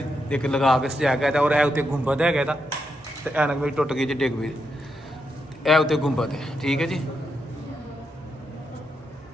ਇੱਕ ਲਗਾ ਕੇ ਸਜਾਇਆ ਗਿਆ ਔਰ ਇਹ ਉੱਤੇ ਗੁੰਬਦ ਹੈਗਾ ਇਹਦਾ ਤੇ ਐਨਕ ਵੀ ਟੁੱਟ ਗਈ ਜੀ ਡਿੱਗ ਪਈ। ਇਹ ਉੱਤੇ ਗੁੰਬਦ ਹੈ। ਠੀਕ ਹੈ ਜੀ।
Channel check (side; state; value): both; normal; correlation 0.83